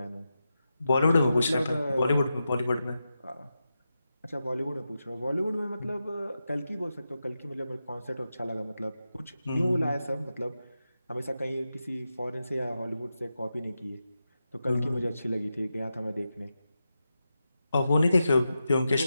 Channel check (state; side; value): inverted; both; correlation -0.89